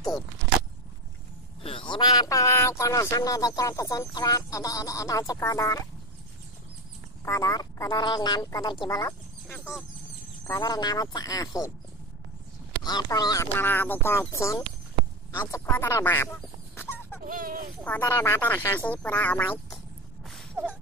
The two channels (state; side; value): normal; both; correlation 0.17